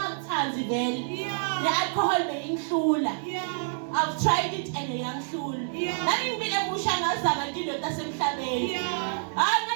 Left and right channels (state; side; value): silent; left; digital silence